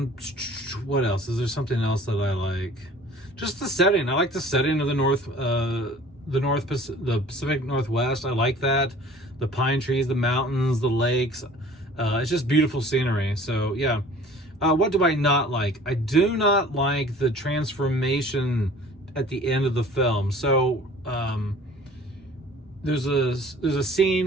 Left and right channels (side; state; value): both; normal; correlation 0.48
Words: else? Is there something else that I like? Just the setting. I like the setting of the Pacific Northwest. I like that. The pine trees, the mountains, the lakes. It's just beautiful scenery. So yeah. What do I not like? I do not like the transformation at the end of the film. So there's a